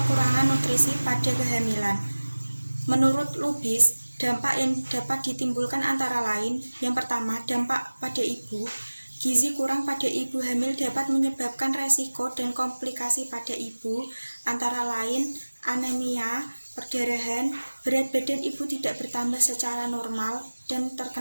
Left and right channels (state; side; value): inverted; both; correlation -1.00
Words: nutrisi pada kehamilan. Menurut Lubis, dampak yang dapat ditimbulkan antara lain, yang pertama, dampak pada ibu. Gizi kurang pada ibu hamil dapat menyebabkan resiko dan komplikasi pada ibu, antara lain anemia, perdarahan, berat badan ibu tidak bertambah secara normal, dan